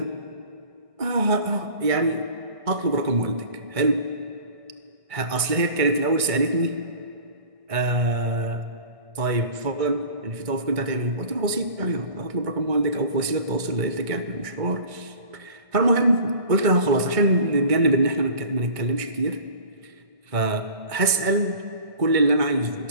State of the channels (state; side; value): late; left; 1.6 ms